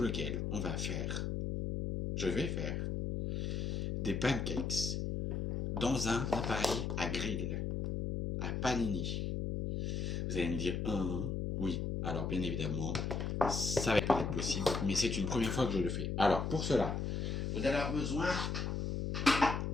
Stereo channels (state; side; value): noise; left; hum, 1 dB below the sound